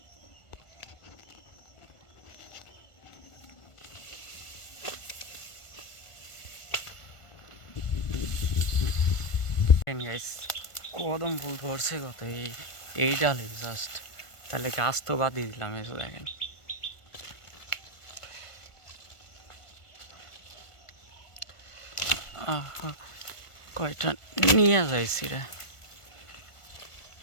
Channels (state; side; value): late; right; 1.4 ms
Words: গাইস কদম ফুল ধরছে কত এই ডালে জাস্ট, তাহলে গাছ তো বাদই দিলাম। এসে দেখেন কয়টা নিয়ে যাইছি রে,